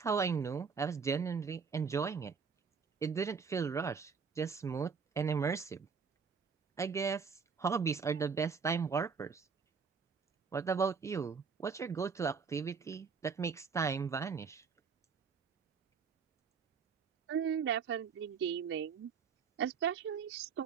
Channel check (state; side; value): quieter; left; 5.8 dB